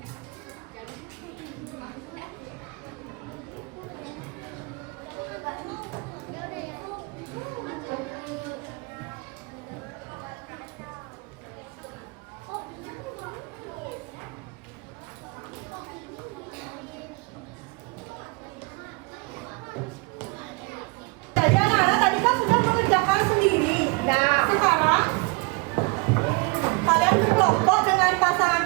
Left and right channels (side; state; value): left; quieter; 29.0 dB